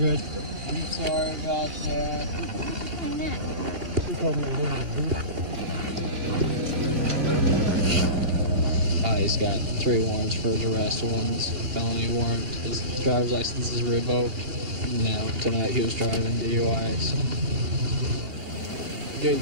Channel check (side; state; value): left; late; 2.8 ms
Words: I'm sorry about that. Why not? You told me I wasn't. He's got 3 warrants for his arrest. One's felony warrant. His driver's license is revoked. Now, tonight he was driving DUI, so good to